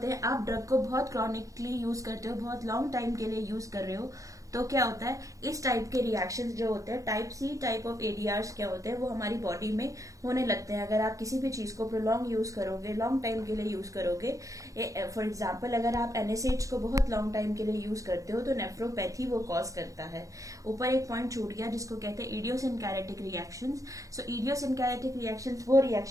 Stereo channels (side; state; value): left; late; 0.16 ms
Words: हैं, आप ड्रग को बहुत क्रॉनिकली यूज करते हो, बहुत लॉन्ग टाइम के लिए यूज कर रहे हो, तो क्या होता है, इस टाइप के रिएक्शंस जो होते हैं, टाइप सी टाइप ऑफ एडीआर्स क्या होते हैं, वो हमारी बॉडी में होने लगते हैं। अगर आप किसी भी चीज को प्रोलॉन्ग यूज करोगे, लॉन्ग टाइम के लिए यूज करोगे, फॉर एग्जाम्पल अगर आप एनएसएड्स को बहुत लॉन्ग टाइम के लिए यूज करते हो तो नेफ्रोपैथी वो कॉज करता है। ऊपर एक पॉइंट छूट गया जिसको कहते हैं इडियोसिनकैरेटिक रिएक्शंस। सो इडियोसिनकैरेटिक रिएक्शंस वो